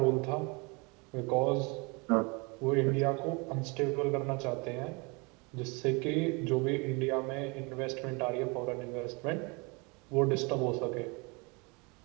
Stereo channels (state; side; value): quieter; left; 29.5 dB